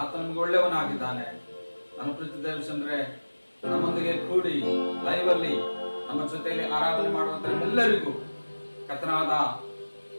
ಆತ ನಮ್ಗೆ ಒಳ್ಳೆಯವನಾಗಿದ್ದಾನೆ. ನನ್ನ ಪ್ರೀತಿ ದೇವರ ಜನರೇ, ನಮ್ಮೊಂದಿಗೆ ಕೂಡಿ ಲೈವ್ ಅಲ್ಲಿ ನಮ್ಮ ಜೊತೆಯಲ್ಲಿ ಆರಾಧನೆ ಮಾಡುವಂತ ಎಲ್ಲರಿಗೂ ಕರ್ತನಾದ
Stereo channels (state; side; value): inverted; both; correlation -1.00